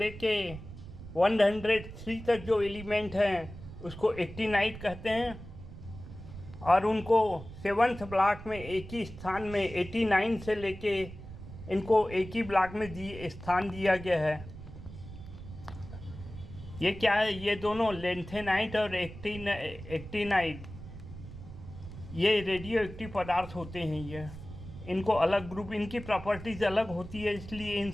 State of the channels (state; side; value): noise; right; rumble, 13 dB below the sound